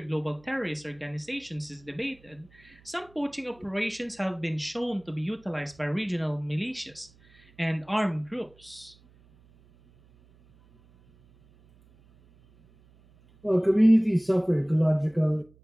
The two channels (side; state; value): right; noise; hum, 28 dB below the sound